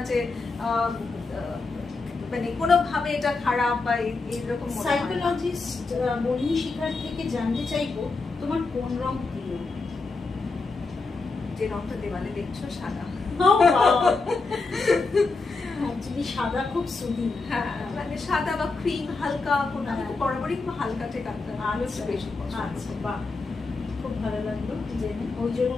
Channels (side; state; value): right; quieter; 3.9 dB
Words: যে মানে কোনোভাবে এটা খারাপ বা এইরকম। সাইকোলজিস্ট বনিশিখার থেকে জানতে চাইবো তোমার কোন রং প্রিয়? যে রংটা দেওয়ালে দেখছো সাদা। অ্যাকচুয়ালি সাদা খুব সুদিন, হ্যাঁ মানে সাদা বা ক্রিম হালকা, কোনো বরাবরই খুব হালকা থেকে বেশি পছন্দ। আচ্ছা বাহ, খুব ভালো লাগলো যে ওই জন্য